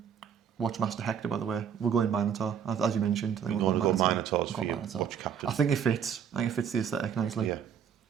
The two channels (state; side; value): quieter; left; 7.9 dB